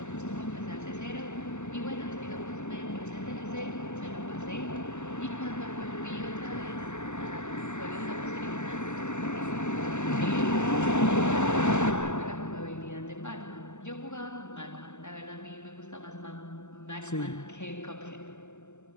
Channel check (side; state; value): right; late; 0.83 ms